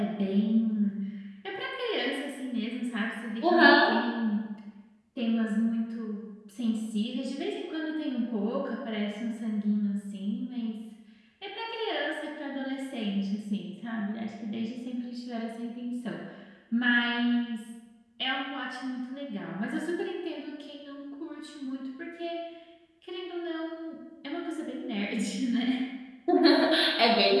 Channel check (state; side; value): identical; both; correlation 1.00